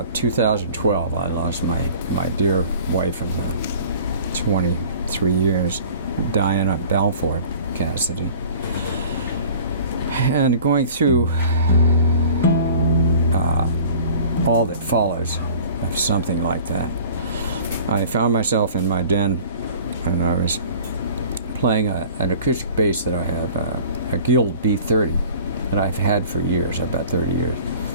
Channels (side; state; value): both; inverted; correlation -0.46